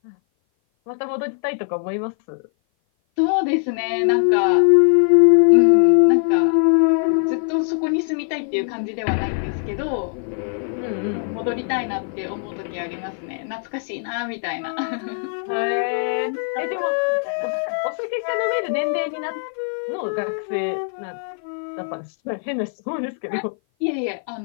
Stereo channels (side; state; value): right; silent; 56 dB below the other